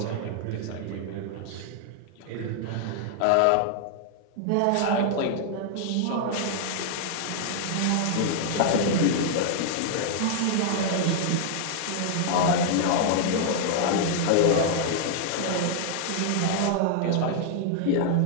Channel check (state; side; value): different; both; correlation -0.01